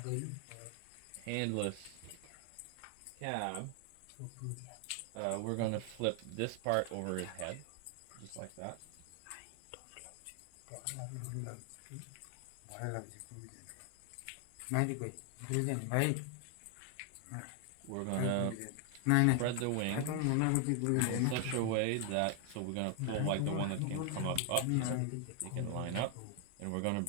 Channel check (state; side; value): different; both; correlation 0.00